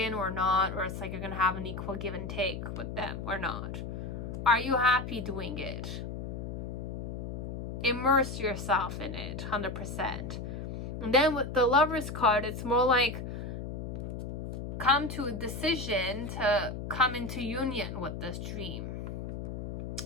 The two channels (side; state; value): left; noise; hum, 6 dB below the sound